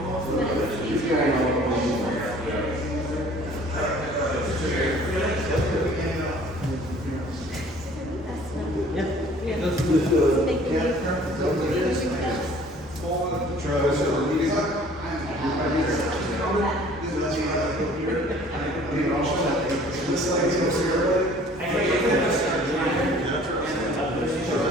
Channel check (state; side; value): normal; both; correlation 0.52